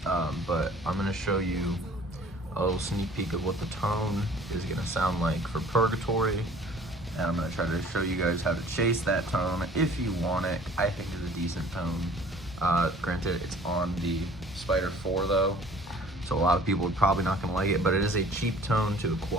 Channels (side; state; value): both; normal; correlation 0.51